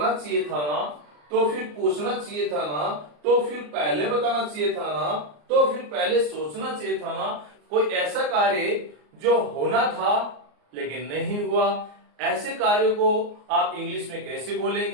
चाहिए था ना, तो फिर पूछना चाहिए था ना, तो फिर पहले बताना चाहिए था ना, तो फिर पहले सोचना चाहिए था ना। कोई ऐसा कार्य जो होना था लेकिन नहीं हुआ, ऐसे कार्यों को आप इंग्लिश में कैसे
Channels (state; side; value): late; left; 34 ms